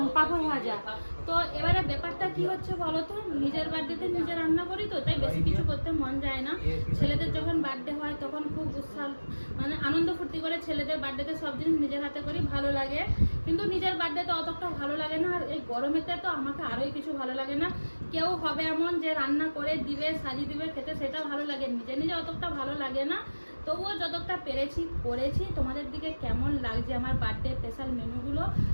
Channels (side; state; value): both; inverted; correlation -1.00